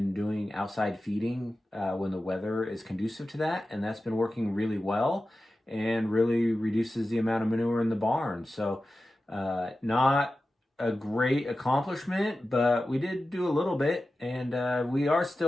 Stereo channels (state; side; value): normal; both; correlation 0.94